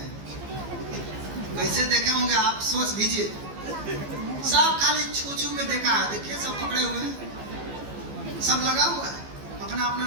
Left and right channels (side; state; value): left; late; 15 ms